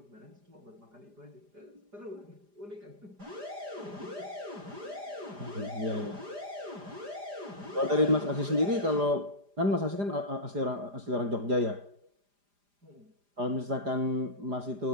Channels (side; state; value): left; late; 4.9 ms